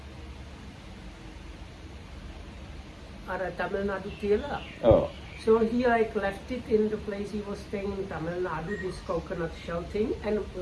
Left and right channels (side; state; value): both; identical; correlation 1.00